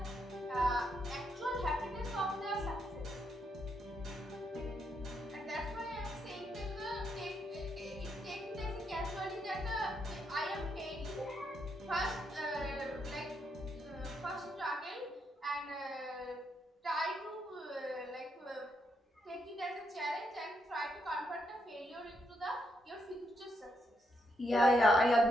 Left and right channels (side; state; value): both; normal; correlation 0.79